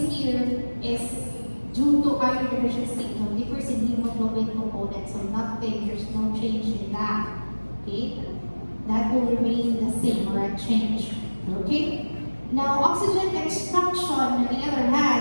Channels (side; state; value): both; inverted; correlation -1.00